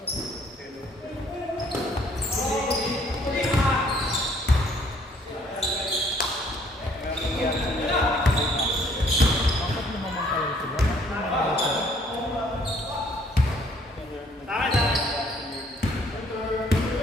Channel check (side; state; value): both; normal; correlation 0.62